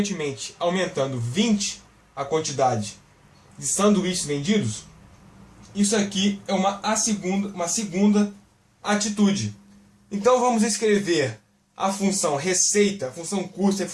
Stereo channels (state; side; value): identical; both; correlation 1.00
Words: aumentando 20 a quantidade de sanduíches vendidos, isso aqui é uma segunda atitude. Então vamos escrever a função receita, a função custo e a